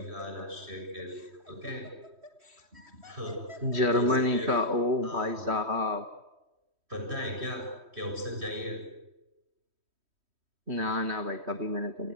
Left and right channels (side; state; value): left; late; 3.1 ms